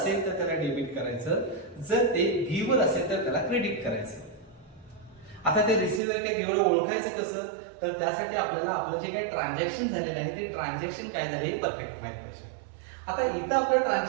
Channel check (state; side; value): drops out; left; at 6.0 s